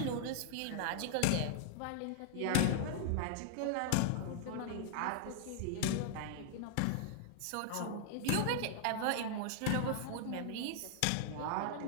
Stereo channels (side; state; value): both; different; correlation -0.01